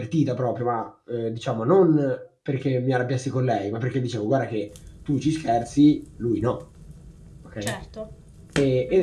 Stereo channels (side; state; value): both; identical; correlation 1.00